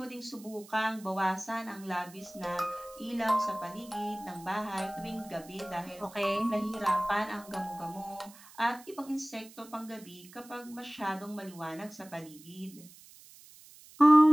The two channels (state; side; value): noise; right; hiss, 21 dB below the sound